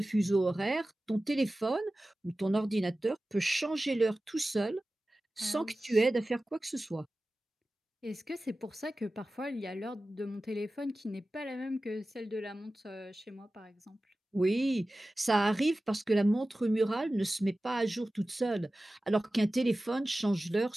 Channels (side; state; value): both; normal; correlation 0.96